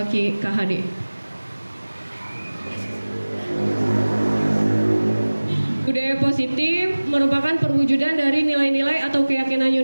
Budaya positif merupakan perwujudan dari nilai-nilai atau keyakinan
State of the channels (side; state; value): both; inverted; correlation -1.00